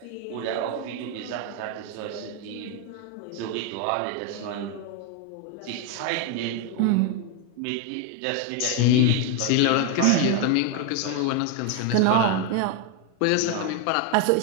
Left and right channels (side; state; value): both; different; correlation 0.01